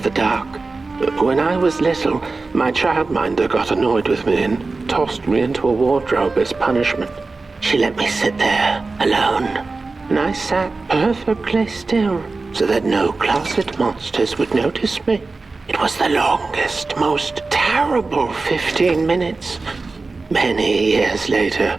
the dark. When I was little, my childminder got annoyed with me and tossed me into a wardrobe as punishment. She let me sit there, alone, and I sat perfectly still so that no closet monsters would notice me. It was the longest, most terrible 15 minutes. Many years later,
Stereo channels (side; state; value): left; quieter; 3.8 dB